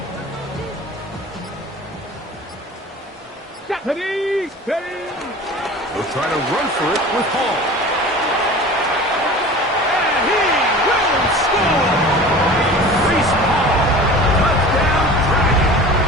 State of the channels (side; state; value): both; normal; correlation 0.39